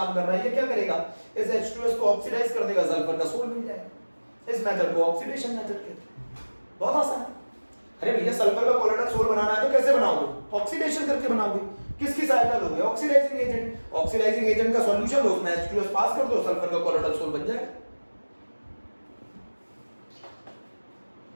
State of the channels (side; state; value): both; inverted; correlation -1.00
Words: कर रहा है, ये क्या करेगा, इस H2S को ऑक्सीडाइज कर देगा, सल्फर का सोल मिल जाएगा। इस मेथड को ऑक्सीडेशन मेथड कहते हैं, बहुत आसान है। अरे भैया सल्फर का कॉलोइडल सोल बनाना है तो कैसे बनाओगे, ऑक्सीडेशन करके बनाओगे, किसकी सहायता लोगे, ऑक्सीडाइजिंग एजेंट, ऑक्सीडाइजिंग एजेंट का सॉल्यूशन लो, उसमें H2S पास कर दो, सल्फर का कॉलोइडल सोल बन जाएगा।